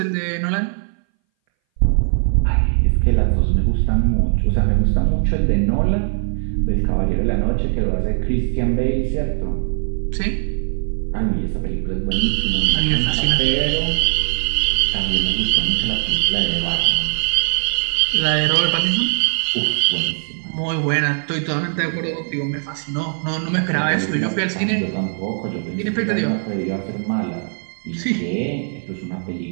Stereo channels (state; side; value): silent; left; 61 dB below the other